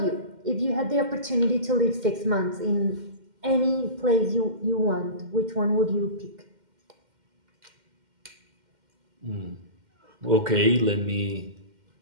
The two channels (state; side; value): late; left; 2.1 ms